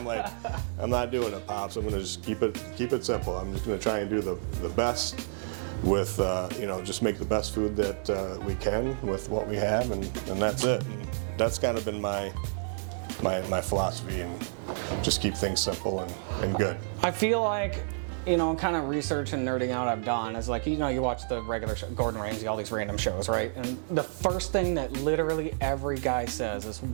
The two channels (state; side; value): silent; left; digital silence